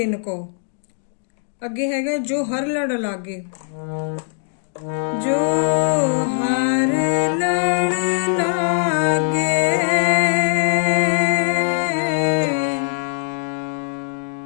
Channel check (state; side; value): silent; right; digital silence